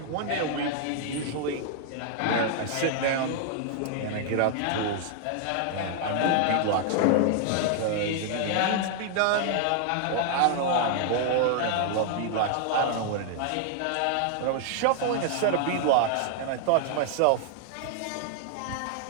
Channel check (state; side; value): different; both; correlation 0.00